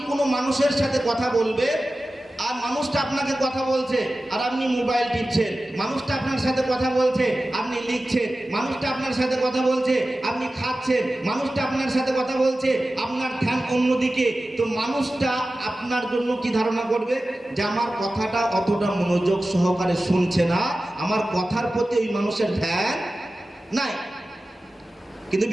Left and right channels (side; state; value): both; normal; correlation 0.95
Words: কোনো মানুষের সাথে কথা বলবেন আর মানুষটা আপনাকে কথা বলছে আর আপনি মোবাইল টিপছেন, মানুষটা আপনার সাথে কথা বলছে আপনি লিখছেন, মানুষটা আপনার সাথে কথা বলছে আপনি খাচ্ছেন, মানুষটা আপনার সাথে কথা বলছে আপনার ধ্যান অন্যদিকে, তো মানুষটা আপনার জন্য কি ধারণা করবে? যে আমার কথাটা অতটা মনোযোগ সহকারে শুনছে না, আমার কথার প্রতি ওই মানুষের ধ্যান নাই। কিন্তু